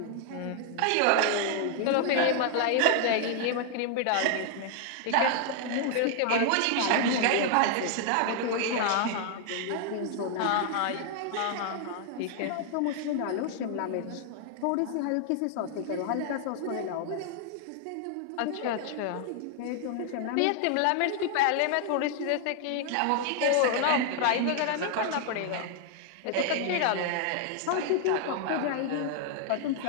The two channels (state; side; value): different; both; correlation 0.00